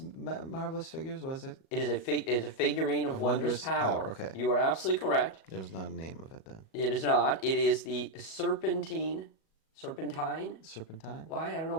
Marvelous Figures, was it? It is a figurine of wondrous power. Okay. You are absolutely correct. There's not a name of it then. It is not. It is the serpentine? Serpentine? Why? I don't know.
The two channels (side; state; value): right; late; 37 ms